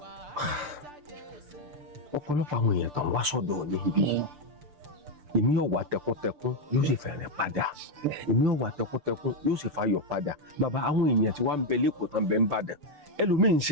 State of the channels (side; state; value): left; late; 6.8 ms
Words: ọ̀pọ̀lọpọ̀ àwọn èèyàn tó ń wá sọ́dọ̀ níbí èmi ò wá tẹkuntẹkun yóò sì fẹ̀rẹ̀ padà èmi ò wá tẹkuntẹkun yóò sì fayọ̀ padà bàbá àwọn èèyàn tí wàá ń bẹ lẹ́kọ̀ọ́ tán bẹ ń bàdàn ẹlòmíì ń